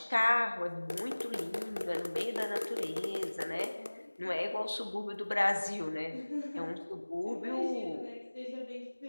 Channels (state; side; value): inverted; both; correlation -1.00